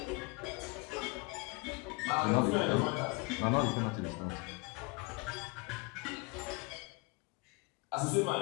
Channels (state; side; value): quieter; right; 28.0 dB